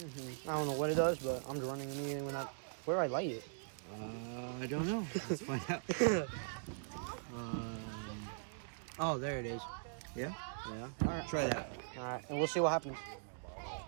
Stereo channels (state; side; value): silent; left; digital silence